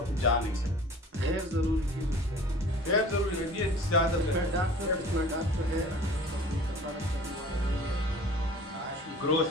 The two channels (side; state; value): both; normal; correlation 0.45